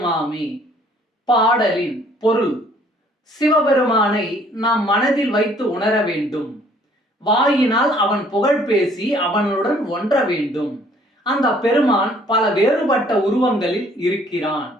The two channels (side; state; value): both; normal; correlation 0.60